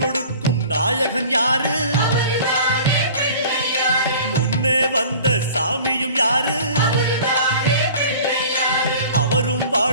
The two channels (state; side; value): inverted; both; correlation -0.44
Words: நாயகன் யாரு? முன்னே வந்த சாமியும் யாரு? அவரும்